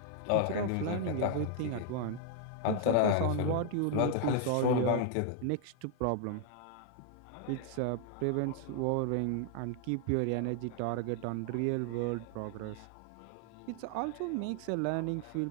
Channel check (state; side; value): different; both; correlation 0.00